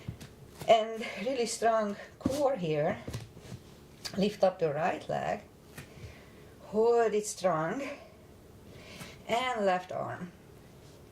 And really strong core here. Lift up the right leg. Hold it strong. And left arm.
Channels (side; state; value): both; identical; correlation 1.00